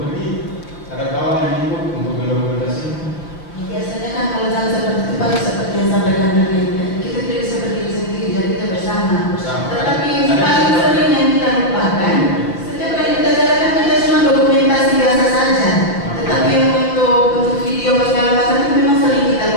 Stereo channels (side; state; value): right; late; 5.6 ms